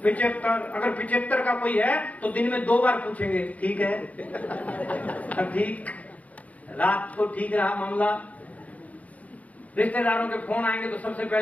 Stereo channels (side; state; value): right; late; 0.070 ms